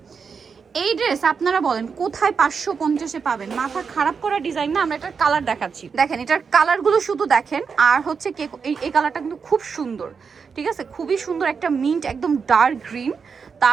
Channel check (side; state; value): left; quieter; 5.8 dB